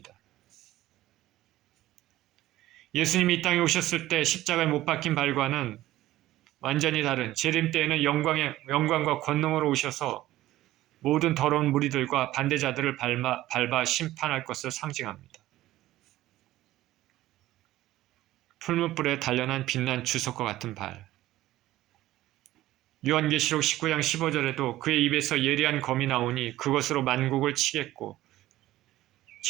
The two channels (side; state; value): left; quieter; 15.5 dB